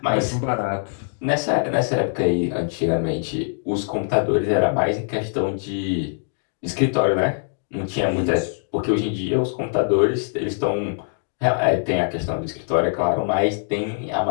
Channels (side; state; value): right; silent; digital silence